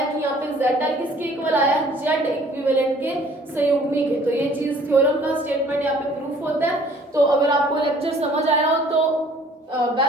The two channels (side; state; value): both; normal; correlation 0.55